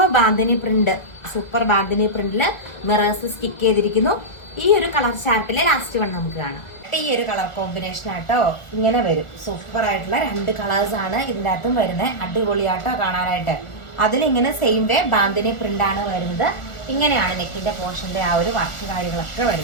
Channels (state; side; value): late; right; 1.4 ms